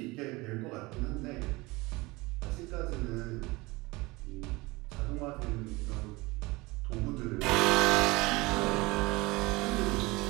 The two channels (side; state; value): left; quieter; 22.8 dB